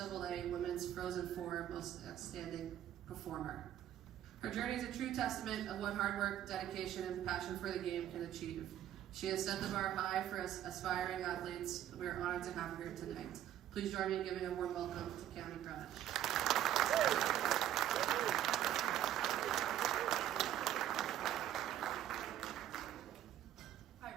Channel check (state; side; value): quieter; left; 11.7 dB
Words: Women's Frozen Four Most Outstanding Performer. Her journey is a true testament of what hard work, dedication, and passion for the game can achieve. She has set the bar high for us aspiring athletes. We are honored to have her here tonight. Please join me in giving a warm welcome to Cami Cronish.